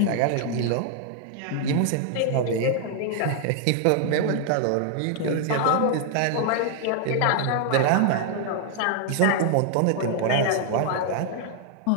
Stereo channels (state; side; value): different; both; correlation 0.00